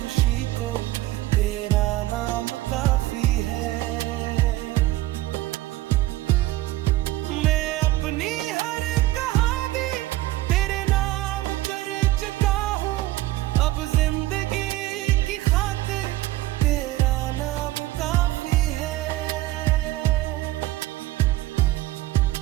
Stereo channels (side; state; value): left; quieter; 16.6 dB